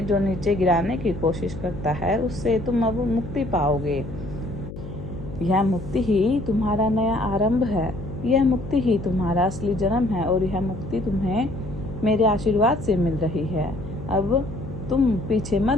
जो नीचे गिराने की कोशिश करता है उससे तुम अब मुक्ति पाओगे। यह मुक्ति ही तुम्हारा नया आरंभ है। यह मुक्ति ही तुम्हारा असली जन्म है, और यह मुक्ति तुम्हें मेरे आशीर्वाद से मिल रही है। अब तुम पीछे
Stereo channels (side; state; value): left; noise; hum, 11 dB below the sound